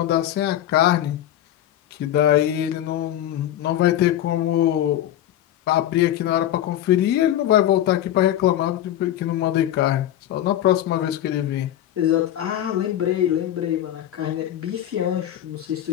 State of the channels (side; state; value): right; quieter; 12.2 dB